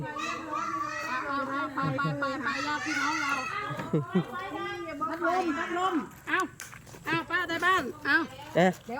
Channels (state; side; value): identical; both; correlation 1.00